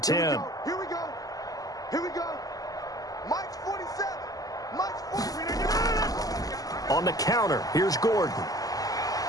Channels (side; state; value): right; late; 0.17 ms